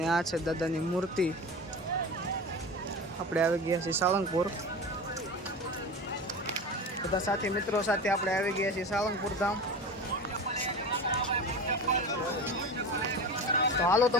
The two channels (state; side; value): normal; both; correlation 0.30